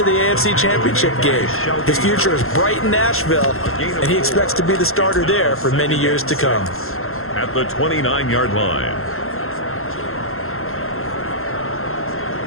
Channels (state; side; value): late; right; 0.62 ms